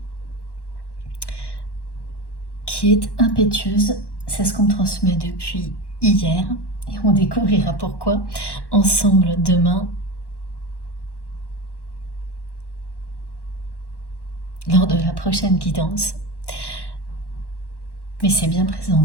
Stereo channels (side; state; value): right; late; 1.1 ms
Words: qui est impétueuse, c'est ce qu'on me transmet depuis hier et on découvrira pourquoi ensemble demain lors de la prochaine guidance. Mais c'est bien présent